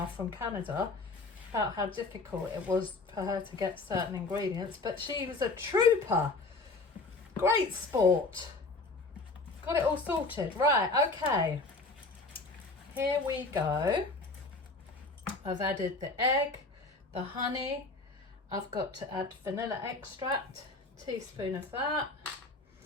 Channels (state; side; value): quieter; right; 3.5 dB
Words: from Canada about how difficult it was for her to get certain ingredients, but she was a trooper. Great sport. Got it all sorted. Right, okay. Here we go. I've added the egg, the honey. I've got to add vanilla extract, teaspoon of that.